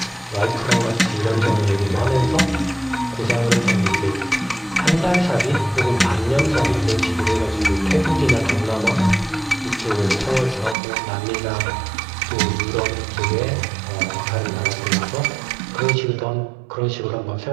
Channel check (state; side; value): drops out; left; at 10.8 s